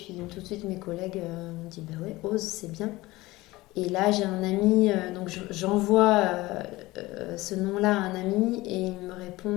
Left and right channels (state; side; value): quieter; right; 19.6 dB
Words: tout de suite, mes collègues m'ont dit bah ouais, ose, c'est bien. Et là, j'ai un ami, donc j'envoie ce nom-là à un ami, et il me